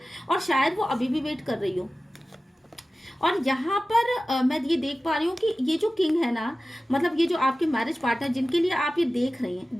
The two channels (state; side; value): normal; both; correlation 0.96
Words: और शायद वो अभी भी वेट कर रही हो। और यहाँ पर मैं ये देख पा रही हूँ कि ये जो किंग है ना, मतलब ये जो आपके मैरिज पार्टनर जिनके लिए आप ये देख